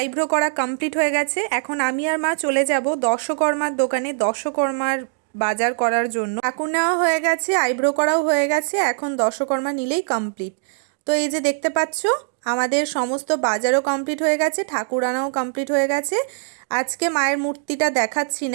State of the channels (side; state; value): left; silent; digital silence